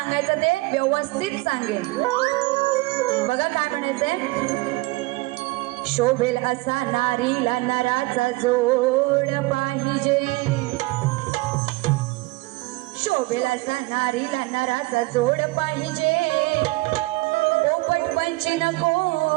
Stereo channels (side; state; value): left; quieter; 22.5 dB